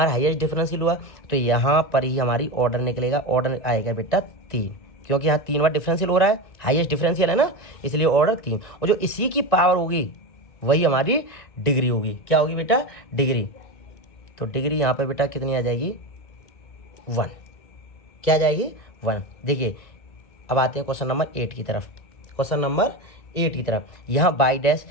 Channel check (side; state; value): right; late; 2.1 ms